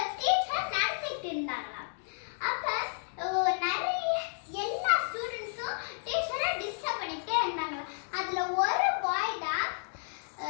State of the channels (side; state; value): right; silent; digital silence